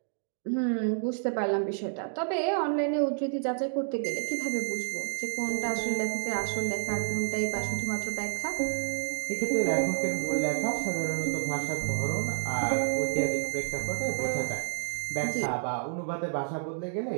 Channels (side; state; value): left; silent; digital silence